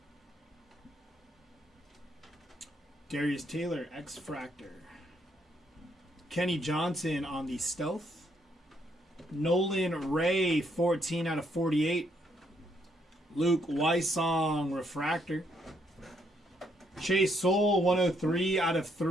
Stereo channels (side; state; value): both; normal; correlation 0.72